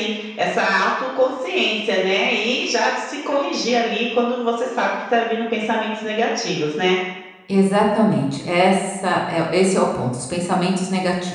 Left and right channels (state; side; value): identical; both; correlation 1.00